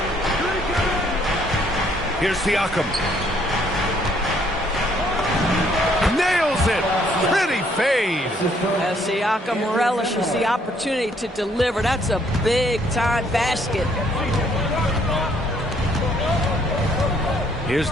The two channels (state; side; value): normal; both; correlation 0.66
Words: Here's Siakam. Nails it. Pretty fade. Siakam relishes the opportunity to deliver. That's a big-time basket. Here's